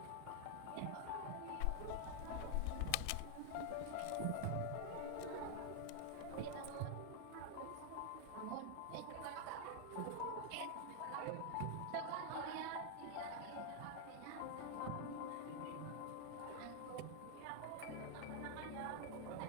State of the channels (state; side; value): different; both; correlation 0.00